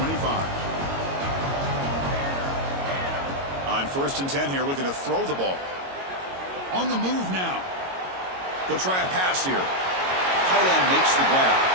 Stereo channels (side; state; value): left; late; 22 ms